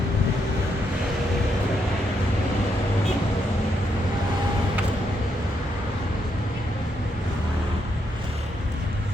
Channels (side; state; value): both; normal; correlation 0.78